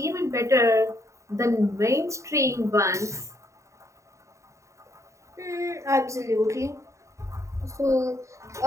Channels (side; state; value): left; late; 0.14 ms